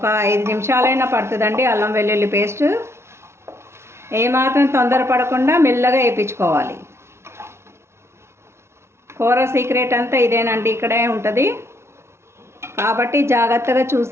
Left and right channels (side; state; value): left; late; 0.13 ms